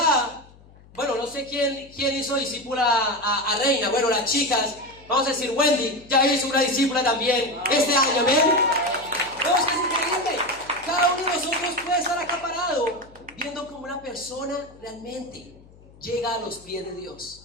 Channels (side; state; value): left; noise; hum, 24 dB below the sound